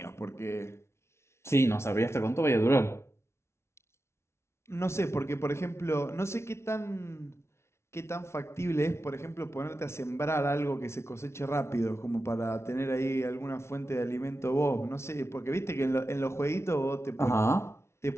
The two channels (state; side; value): late; right; 0.13 ms